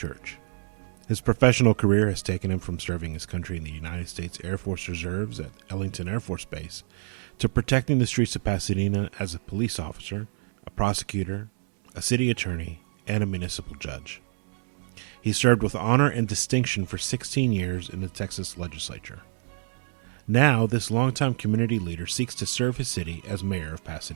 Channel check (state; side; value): silent; left; digital silence